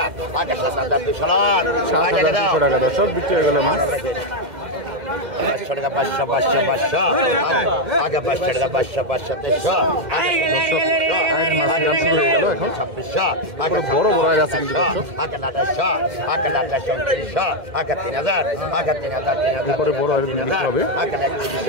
আগে 7200 টাকা দর্শক বিক্রি হয়ে গেল মাছ। 500 টাকা 500 আগে 500 টাকা 500 300 মাছ শুরু হয়ে গেল এখন 2600, আগে বড় বড় আছে কিন্তু দর্শক, আগে 2800, আগে 2900, আগে 3000, আগে 3000, এরপরে বড় আর বিক্রি হবে আগে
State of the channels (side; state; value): left; late; 2.1 ms